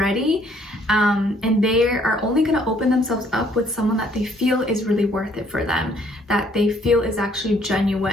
and they are only going to open themselves up with someone that they feel is really worth it for them, that they feel is actually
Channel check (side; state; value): both; normal; correlation 0.63